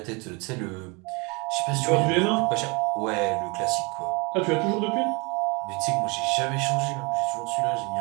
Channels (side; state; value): left; quieter; 29.0 dB